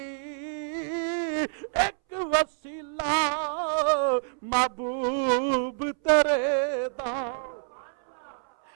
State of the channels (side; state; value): left; silent; 60 dB below the other